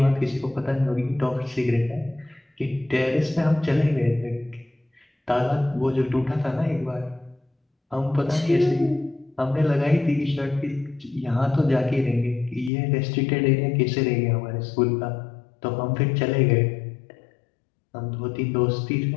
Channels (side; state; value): right; drops out; at 12.7 s